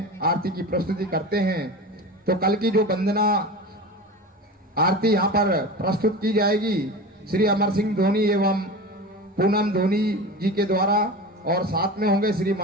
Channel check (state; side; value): normal; both; correlation 0.30